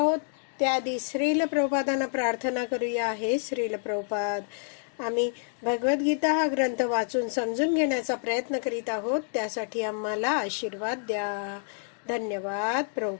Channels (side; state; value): right; silent; digital silence